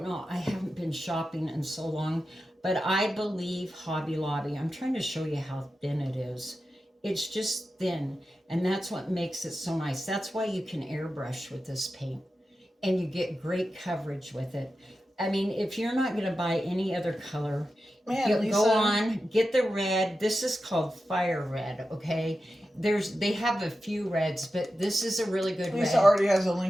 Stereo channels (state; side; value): normal; both; correlation 0.91